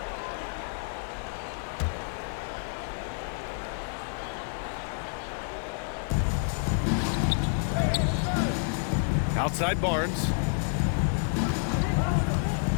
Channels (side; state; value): right; silent; 58 dB below the other